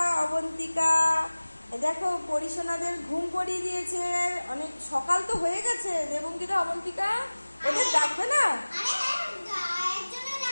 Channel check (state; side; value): inverted; both; correlation -1.00